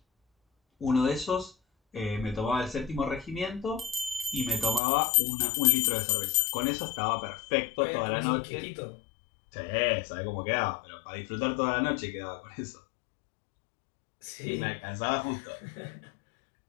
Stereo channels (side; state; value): right; drops out; at 4.8 s